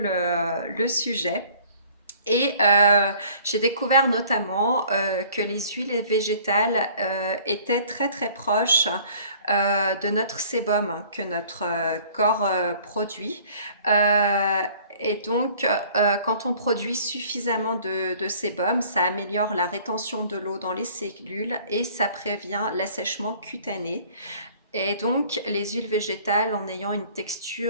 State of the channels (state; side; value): inverted; both; correlation -0.52